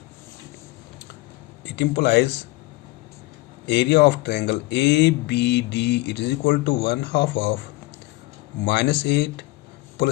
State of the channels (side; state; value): right; quieter; 20.8 dB